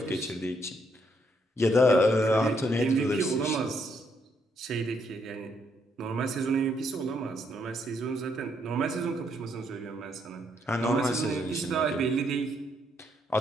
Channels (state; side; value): normal; both; correlation 0.74